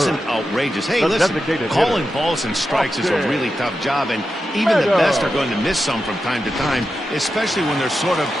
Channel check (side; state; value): both; normal; correlation 0.89